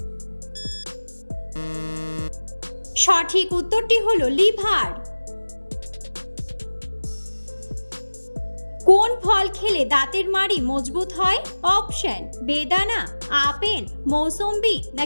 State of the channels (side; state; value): both; inverted; correlation -1.00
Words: সঠিক উত্তরটি হলো লিভার। কোন ফল খেলে দাঁতের মাড়ি মজবুত হয়? অপশন বেদানা, আপেল, মৌসম্বি